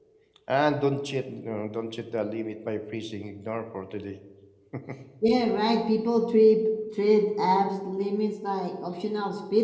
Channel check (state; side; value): identical; both; correlation 1.00